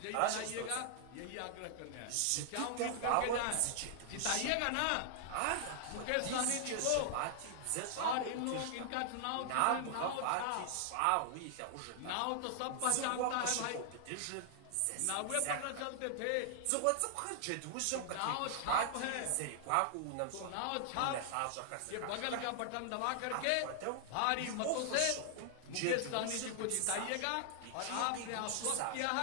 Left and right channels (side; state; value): both; different; correlation 0.00